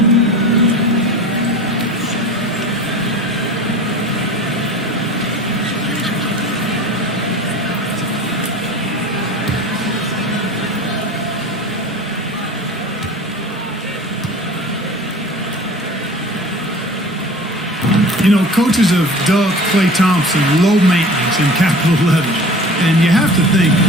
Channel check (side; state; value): both; normal; correlation 0.39